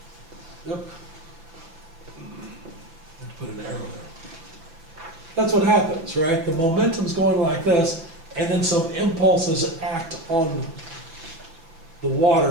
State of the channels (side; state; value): left; late; 6.1 ms